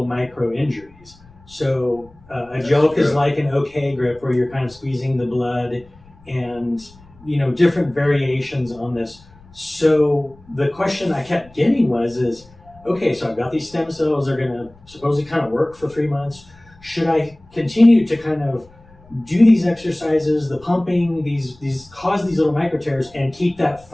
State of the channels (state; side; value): noise; left; rumble, 26 dB below the sound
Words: micro injuries. So a joke is like an OK grip, where you're kind of squeezing the blood, and different variations on this. So the question I kept getting is okay, so I've got these stem cells, they're going to supposedly kind of work for 3 months. Should I continue to kind of do these exercises, the pumping, these cause these little micro tears, and keep that